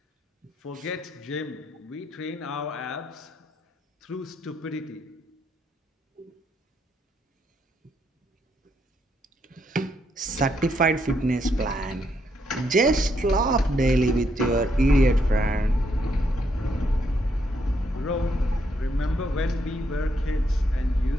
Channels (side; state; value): both; normal; correlation 0.76